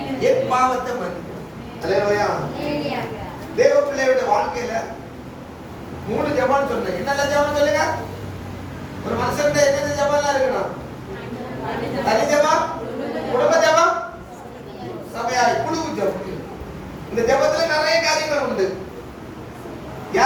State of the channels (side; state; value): both; identical; correlation 1.00